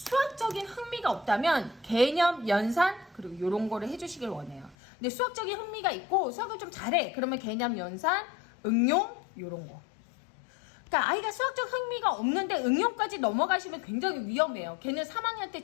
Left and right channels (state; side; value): drops out; right; at 4.8 s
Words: 흥미가 없다면 개념, 연산, 그리고 이런 거를 해주시길 원해요. 근데 수학적인 흥미가 있고 수학을 좀 잘해. 그러면 개념, 연산, 응용, 이런 거. 그러니까 아이가 수학적 흥미가 없는데 응용까지 넘어가시면 굉장히 위험해요. 걔는 3학년 때